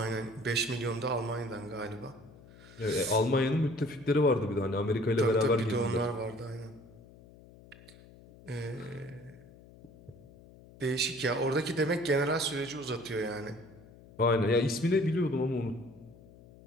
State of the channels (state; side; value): noise; left; hum, 22 dB below the sound